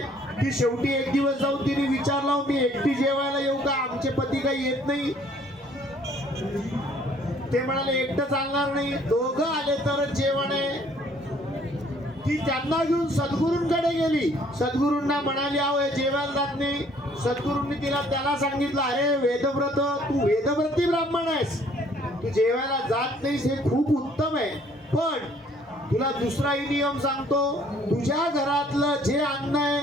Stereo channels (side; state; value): both; normal; correlation 0.60